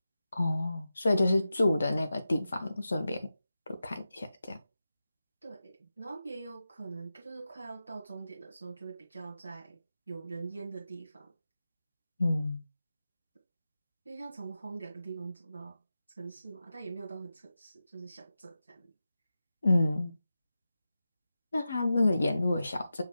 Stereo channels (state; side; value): inverted; both; correlation -0.92